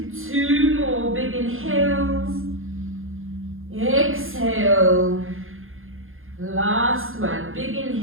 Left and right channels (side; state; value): left; late; 0.60 ms